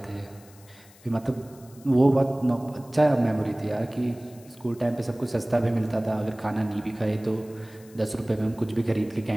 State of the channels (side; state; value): left; noise; hiss, 25 dB below the sound